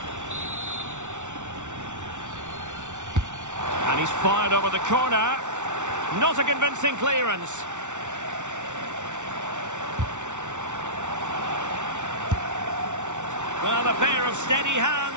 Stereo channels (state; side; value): late; left; 0.85 ms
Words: And he's fired over the corner. Not a convincing clearance. Well, a pair of steady